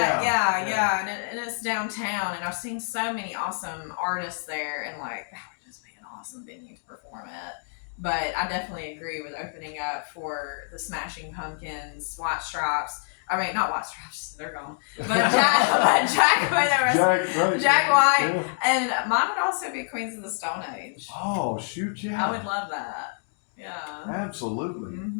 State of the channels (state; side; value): silent; right; digital silence